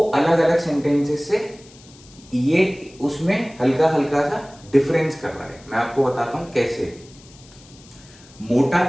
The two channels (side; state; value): left; noise; hiss, 24 dB below the sound